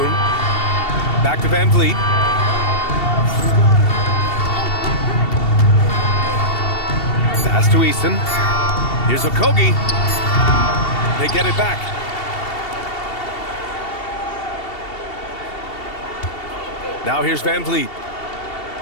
Back to Van Vliet. Pass to Eason. Here's Okogie. They get it back. Now here's Van Vliet.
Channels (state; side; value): late; right; 2.7 ms